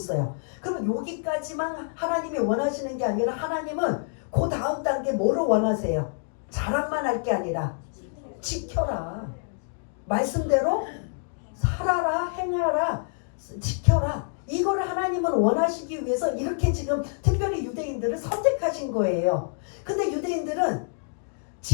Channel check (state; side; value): silent; right; digital silence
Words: 그러면 여기까지만 하나님이 원하시는 게 아니라 하나님은 그 다음 단계 뭐를 원하세요? 자랑만 할 게 아니라 지켜라. 말씀대로 살아라, 행하라, 지켜라. 이거를 하나님은 원하시기 위해서 이렇게 지금 특별히 유대인들을 선택하신 거예요. 근데 유대인들은